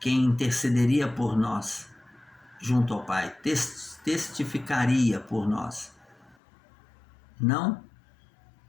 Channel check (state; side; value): drops out; right; at 6.4 s